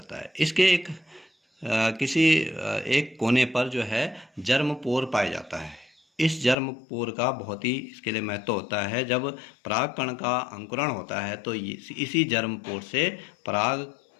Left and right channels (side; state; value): right; drops out; at 6.6 s